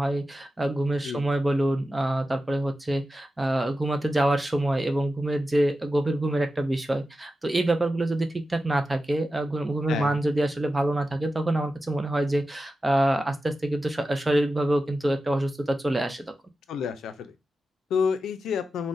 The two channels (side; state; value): both; normal; correlation 0.92